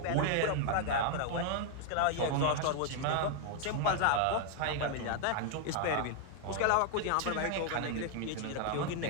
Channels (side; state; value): both; different; correlation 0.00